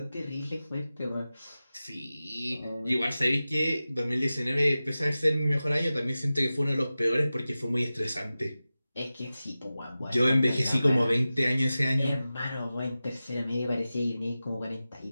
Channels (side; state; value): both; inverted; correlation -0.95